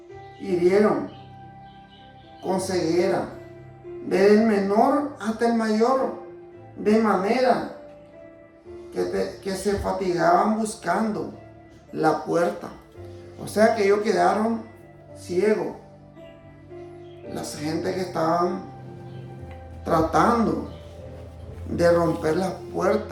hirieron con ceguera, desde el menor hasta el mayor, de manera que se fatigaban buscando la puerta. O sea que ellos quedaron ciegos. Las gente que estaban tratando de romper las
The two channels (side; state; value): both; identical; correlation 1.00